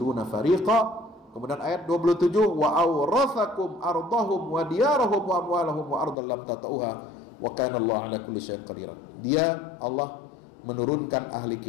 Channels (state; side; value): drops out; right; at 6.2 s